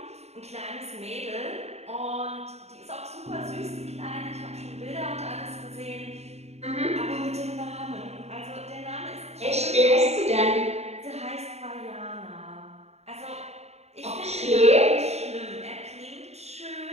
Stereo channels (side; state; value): left; late; 0.31 ms